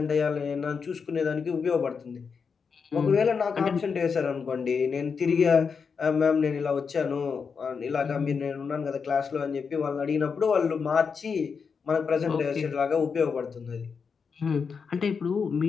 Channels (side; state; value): right; quieter; 5.8 dB